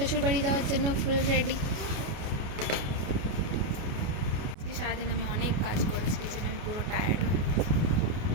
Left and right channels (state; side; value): late; left; 28 ms